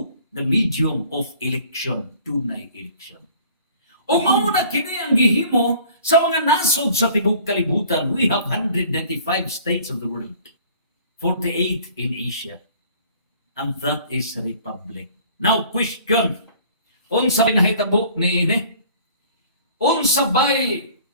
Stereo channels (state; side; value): inverted; both; correlation -0.51